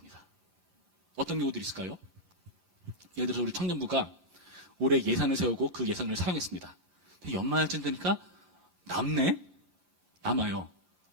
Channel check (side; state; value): left; late; 5.7 ms